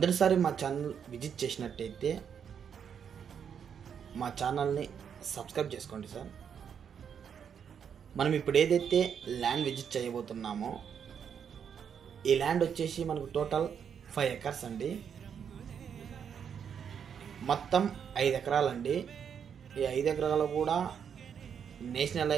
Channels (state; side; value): quieter; left; 7.6 dB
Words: మా channel visit చేసినట్టయితే మా ఛానల్ని సబ్స్క్రైబ్ చేసుకోండి సార్. మనం ఇప్పుడు ఏదైతే ల్యాండ్ విజిట్ చేయబోతున్నామో ఈ ల్యాండ్ వచ్చేసి మనకు టోటల్ 5 ఎకర్స్ అండి. మొత్తం 5 ఎకరాలండి. ఈ 5 ఎకరాలు కూడా నేషనల్